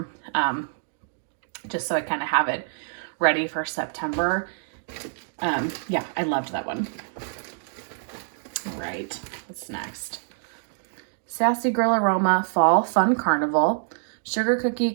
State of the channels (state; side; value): silent; left; digital silence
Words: just so I kind of have it ready for September. Yeah, I loved that one. All right, what's next? Sassy Grill Aroma Fall Fun Carnival. Sugar Cookie,